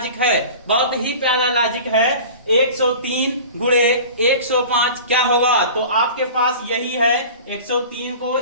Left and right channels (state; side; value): inverted; both; correlation -0.39